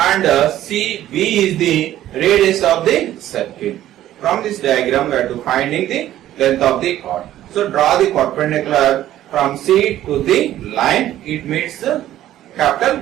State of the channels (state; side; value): quieter; left; 13.1 dB